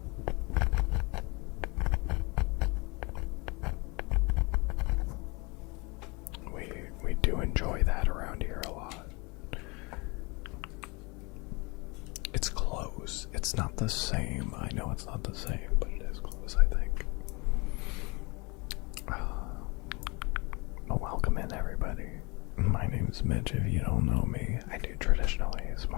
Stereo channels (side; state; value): right; quieter; 27.7 dB